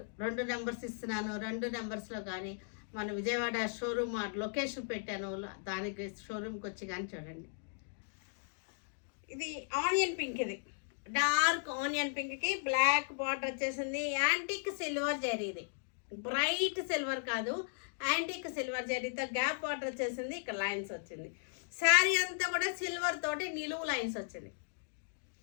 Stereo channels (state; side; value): silent; right; digital silence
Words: 2 నెంబర్స్ ఇస్తున్నాను. 2 నెంబర్స్లో కానీ మన విజయవాడ షోరూమ్ లొకేషన్ పెట్టాను, దానికి షోరూమ్కి వచ్చి కానీ చూడండి. ఇది ఆనియన్ పింక్, ఇది డార్క్ ఆనియన్ పింక్కి బ్లాక్ బార్డర్ వచ్చేసింది. యాంటిక్ సిల్వర్ జరీ, ఇది బ్రైట్ సిల్వర్ కాదు, యాంటిక్ సిల్వర్ జరీతో గ్యాప్ బార్డర్ వచ్చేసింది. ఇక్కడ లైన్స్ వచ్చింది. శారీ అంతా కూడా సిల్వర్ తోటి నిలువు లైన్స్ వచ్చింది.